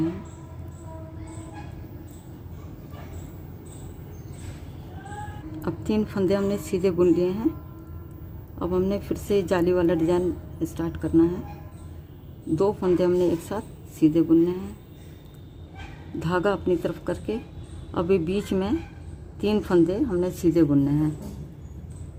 हैं। अब 3 फंदे हमने सीधे बुन लिए हैं। अब हमने फिर से जाली वाला डिज़ाइन स्टार्ट करना है। 2 फंदे हमने एक साथ सीधे बुनने हैं, धागा अपनी तरफ करके। अभी बीच में 3 फंदे हमने सीधे बुनने हैं।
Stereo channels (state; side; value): identical; both; correlation 1.00